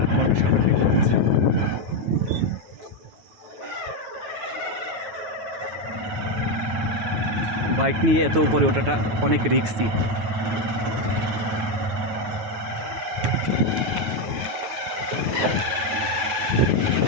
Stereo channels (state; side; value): late; left; 9.4 ms